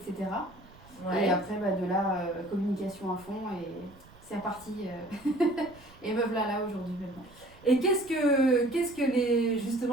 Et après, de là, communication à fond et c'est reparti. Et me voilà là aujourd'hui maintenant. Et qu'est-ce que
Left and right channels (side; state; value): right; noise; rumble, 24 dB below the sound